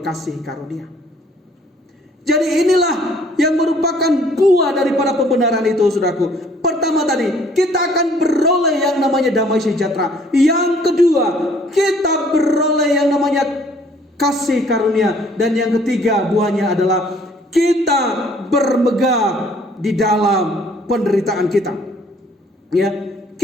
kasih karunia. Jadi inilah yang merupakan buah daripada pembenaran itu, saudaraku. Pertama tadi, kita akan beroleh yang namanya damai sejahtera. Yang kedua, kita beroleh yang namanya kasih karunia. Dan yang ketiga, buahnya adalah kita bermegah di dalam penderitaan kita. Ya,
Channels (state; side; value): normal; both; correlation 0.59